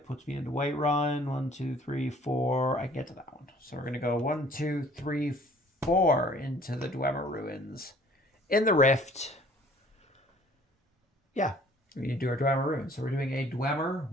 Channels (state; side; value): normal; both; correlation 0.54